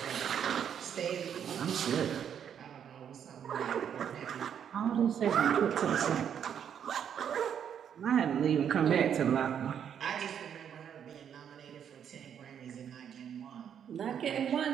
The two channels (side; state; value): left; quieter; 8.5 dB